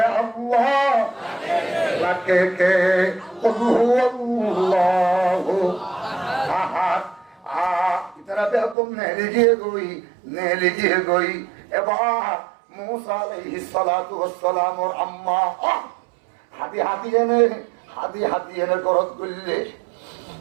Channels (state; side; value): drops out; left; at 8.8 s